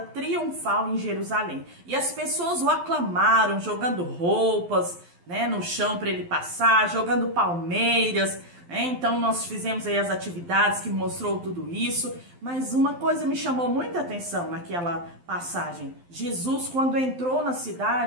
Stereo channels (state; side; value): late; left; 12 ms